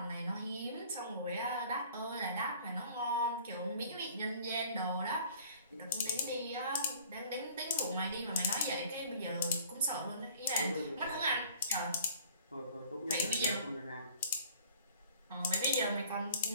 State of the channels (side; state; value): both; inverted; correlation -0.51